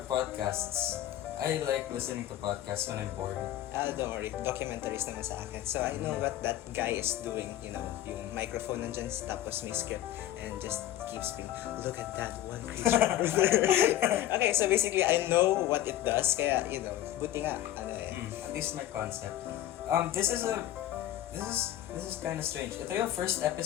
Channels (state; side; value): quieter; right; 12.9 dB